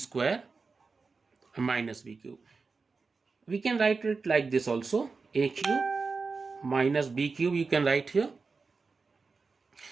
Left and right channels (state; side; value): quieter; left; 4.5 dB